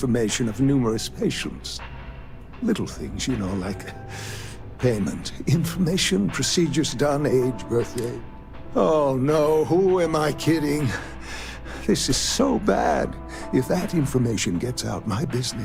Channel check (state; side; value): identical; both; correlation 1.00